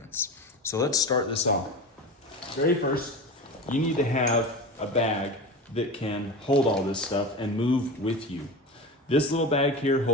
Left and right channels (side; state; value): both; normal; correlation 0.28